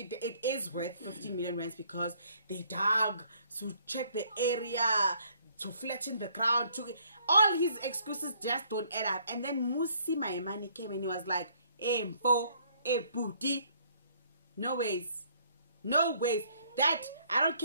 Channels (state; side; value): inverted; both; correlation -0.64